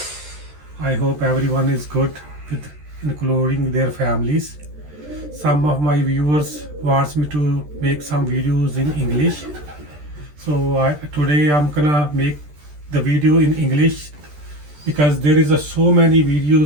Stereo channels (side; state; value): left; late; 13 ms